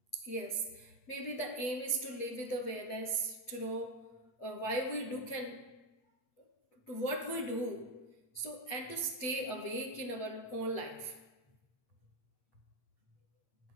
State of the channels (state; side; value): late; right; 8.4 ms